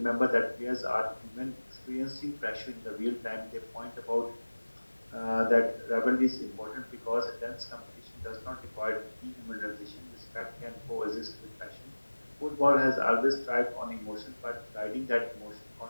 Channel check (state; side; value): inverted; both; correlation -1.00